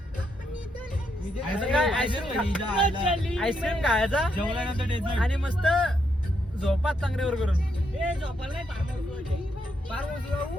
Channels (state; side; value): normal; both; correlation 0.78